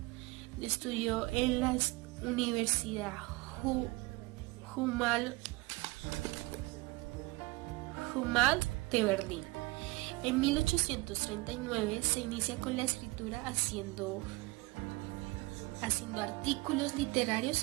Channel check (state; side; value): quieter; left; 23.1 dB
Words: Estudió en la Universidad Humboldt de Berlín. En 1839 se inicia con la escritura haciendo artículos